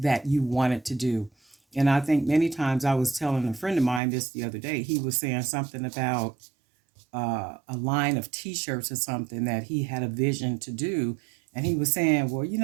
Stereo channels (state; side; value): drops out; left; at 4.0 s